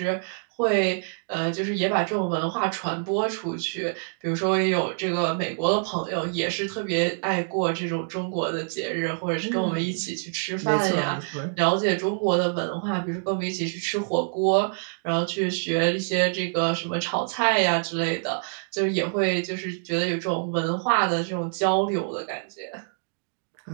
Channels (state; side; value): silent; left; digital silence